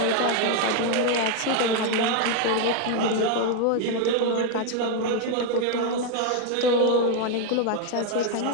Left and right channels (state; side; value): different; both; correlation 0.01